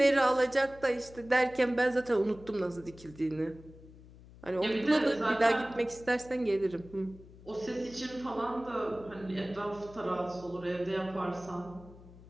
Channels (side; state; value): left; noise; hum, 20 dB below the sound